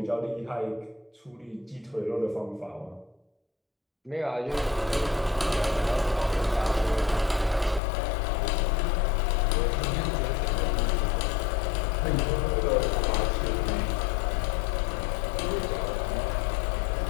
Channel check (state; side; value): drops out; right; at 7.8 s